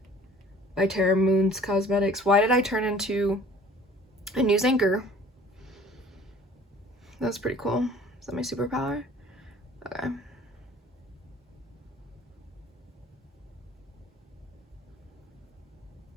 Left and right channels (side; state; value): both; normal; correlation 0.50